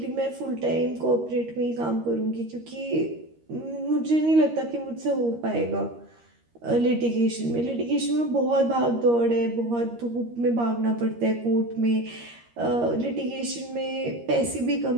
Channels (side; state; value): left; late; 13 ms